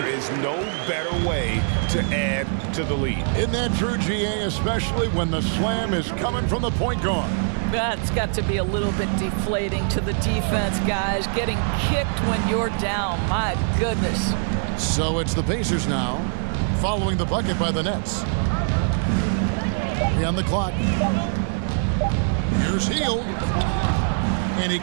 is no better way to add to the lead. Isn't that true, GA, especially when the slam is coming from the point guard? That's got to be a little bit deflating to the defense, guys. Getting kicked when you're down. My goodness. So it's the Pacers now, following the bucket by the Nets. 3 on the clock. Here's Hield. And he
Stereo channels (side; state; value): left; silent; 63 dB below the other